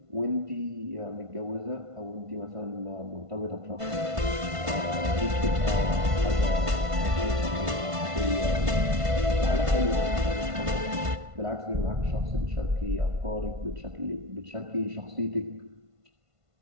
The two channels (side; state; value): left; late; 1.5 ms